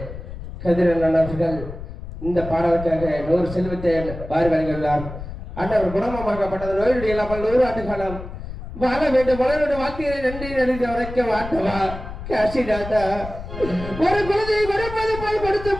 கதிரன் அவர்கள் இந்த பாடலுக்காக 100 செல்வத்தை வாரி வழங்கியுள்ளார். அண்ணவர் குணமாக்கப்பட்டது நோயுடைய இல்லாமல் 100 ஆண்டு காலம் வாழ வேண்டும். மலருடைய வார்த்தையை நன்றி நன்றி உரைக்க வாட்டவா காசிநாதா. ஒரு குழந்தையை கொடுப்பது போல் கொடுத்து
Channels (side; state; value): left; noise; rumble, 11 dB below the sound